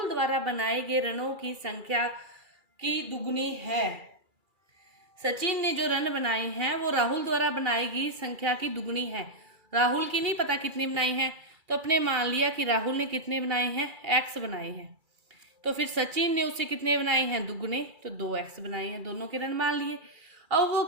द्वारा बनाए गए रनों की संख्या की दुगनी है। सचिन ने जो रन बनाए हैं वो राहुल द्वारा बनाई गई संख्या की दुगनी है। राहुल की नहीं पता कितनी बनाई है, तो अपने मान लिया कि राहुल ने कितने बनाए हैं, x बनाए हैं। तो फिर सचिन ने उससे कितने बनाए हैं, दुगने, तो 2x बनाए हैं। दोनों के रन मान लिए। अब वो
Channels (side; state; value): left; late; 2.3 ms